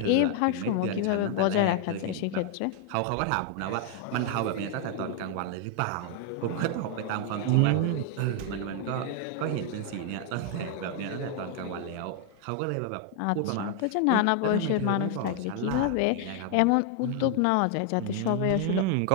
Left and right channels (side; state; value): both; different; correlation 0.00